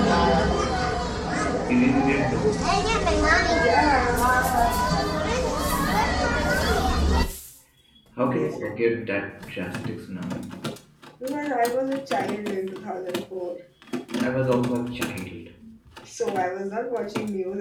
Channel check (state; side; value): identical; both; correlation 1.00